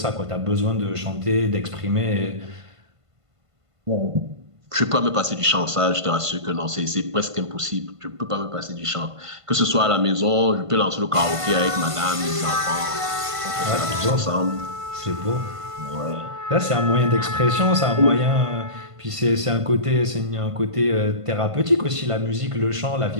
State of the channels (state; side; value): late; left; 1.5 ms